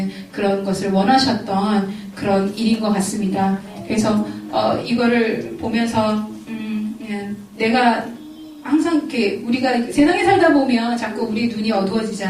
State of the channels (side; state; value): both; identical; correlation 1.00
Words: 그런 것을 원하셨던 그런 일인 것 같습니다. 그래서 이거를 보면서 내가 항상 이렇게 우리가 세상에 살다 보면 자꾸 우리 눈이